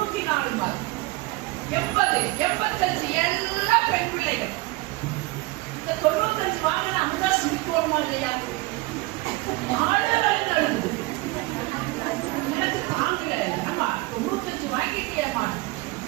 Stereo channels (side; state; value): left; quieter; 21.1 dB